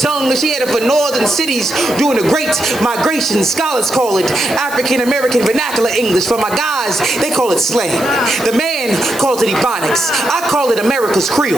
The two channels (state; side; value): noise; right; hiss, 14 dB below the sound